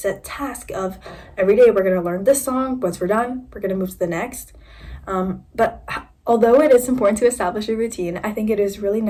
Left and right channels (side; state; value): both; identical; correlation 1.00